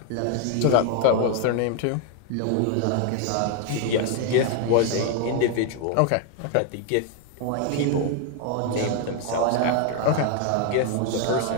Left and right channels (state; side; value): different; both; correlation 0.00